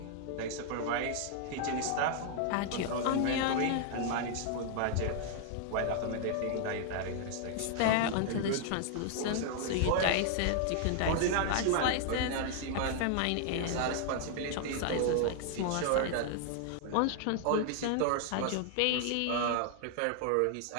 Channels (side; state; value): both; different; correlation 0.00